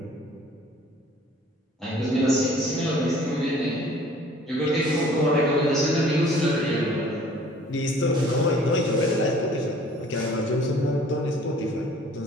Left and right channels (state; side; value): normal; both; correlation 0.53